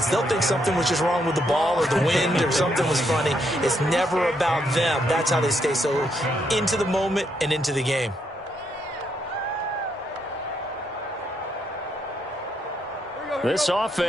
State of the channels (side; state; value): both; normal; correlation 0.76